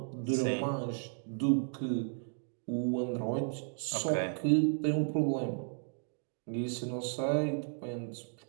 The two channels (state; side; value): silent; left; 55 dB below the other